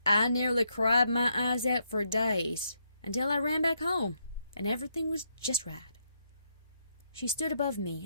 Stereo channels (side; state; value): both; inverted; correlation -0.77